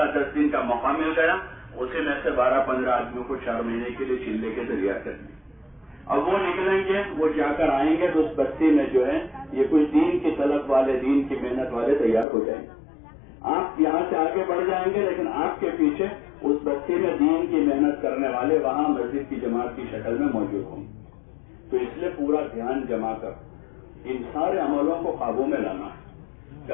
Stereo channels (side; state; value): right; drops out; at 12.2 s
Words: 10 دن کا موقع مل گیا، اسی میں سے 12-15 آدمیوں کو 4 مہینے کے لیے چلے کے تیار کر دیا۔ اب وہ نکلیں گے، وہ جا کر آئیں گے تو اس بستی میں جو ہے یہ کچھ دین کی طلب والے، دین کی محنت والے تیار ہو جائیں گے۔ آپ یہاں سے آگے بڑھ جائیں گے لیکن آپ کے پیچھے اس بستی میں دین کی محنت کرنے والے وہاں مسجد کی جماعت کی شکل میں موجود ہوں گے۔ تو اس لیے پورا دھیان جما کر ان سارے عملوں کو قابو میں لانا ہے،